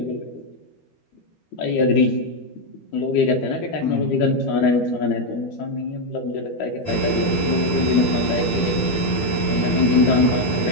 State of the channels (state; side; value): late; right; 12 ms